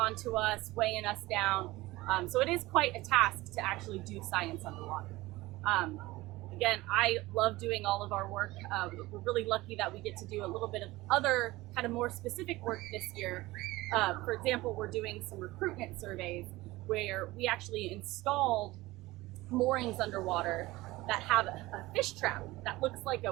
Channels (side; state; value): left; quieter; 19.3 dB